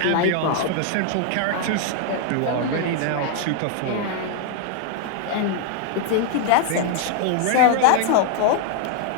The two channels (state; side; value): different; both; correlation 0.00